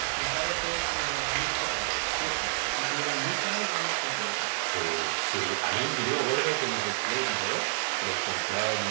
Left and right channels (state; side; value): silent; left; digital silence